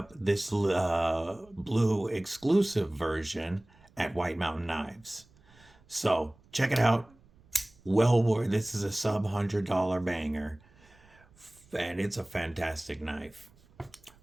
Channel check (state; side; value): noise; right; rumble, 28 dB below the sound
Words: this blue exclusive version at White Mountain Knives. So check it out. Well worth. This is a sub $100 banger, and it's a fantastic knife.